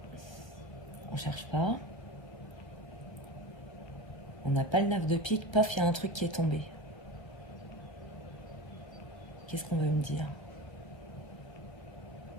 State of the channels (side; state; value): right; late; 1.2 ms